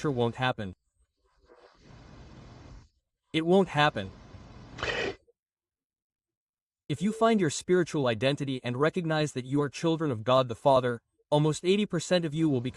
won't happen. It won't happen. If you find your spiritual identity and recognize that you are children of God the Father, almost 80% of you will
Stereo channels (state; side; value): identical; both; correlation 1.00